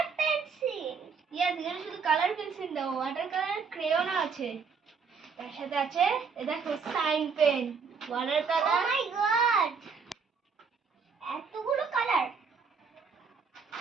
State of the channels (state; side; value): quieter; left; 5.6 dB